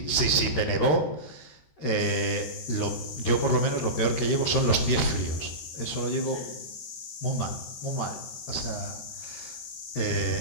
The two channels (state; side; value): late; right; 13 ms